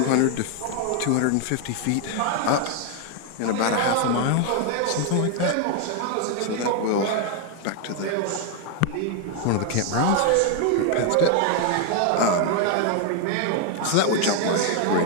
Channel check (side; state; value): both; different; correlation 0.00